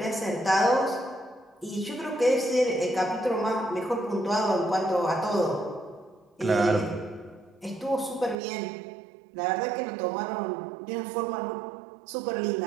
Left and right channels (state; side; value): drops out; left; at 8.3 s